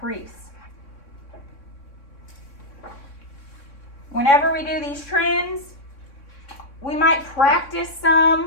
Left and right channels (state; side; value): late; right; 3.6 ms